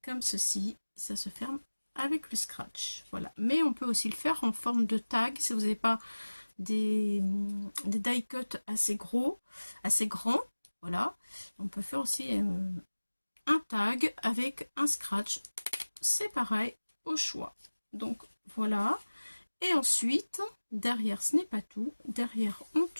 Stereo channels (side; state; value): both; inverted; correlation -1.00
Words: comme ceci, ça se ferme avec le scratch. Voilà, mais on peut aussi le faire en forme de tag si vous n'avez pas des die cut assez gros, assez grands. Voilà, on peut faire aussi un tag avec un scratch. C'est pareil, au choix. Donc voilà, et ensuite derrière, ce n'est pas tout, derrière on